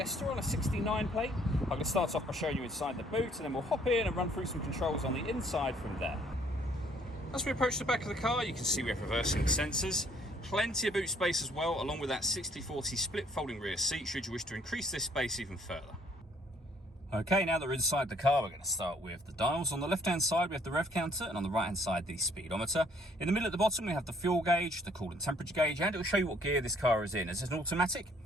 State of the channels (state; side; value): normal; both; correlation 0.63